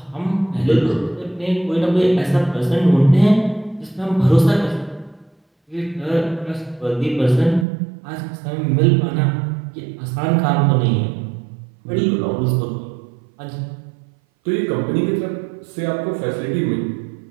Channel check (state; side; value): drops out; left; at 7.7 s